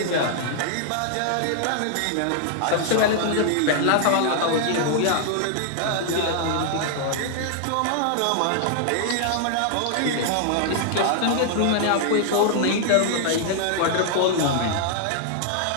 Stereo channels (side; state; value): both; different; correlation -0.01